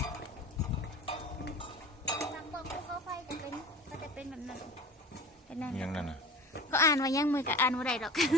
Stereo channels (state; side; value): normal; both; correlation 0.38